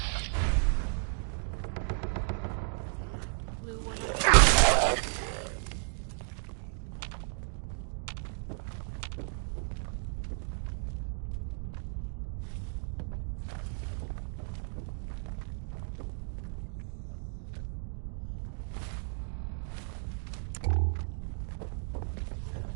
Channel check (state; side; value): silent; left; 55 dB below the other